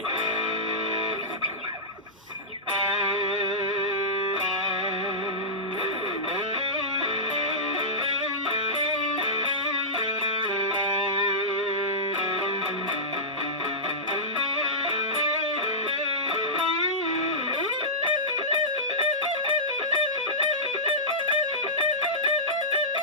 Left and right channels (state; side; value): normal; both; correlation -0.15